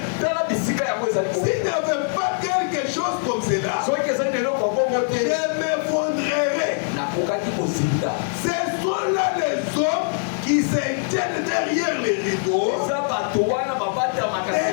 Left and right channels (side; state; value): right; silent; digital silence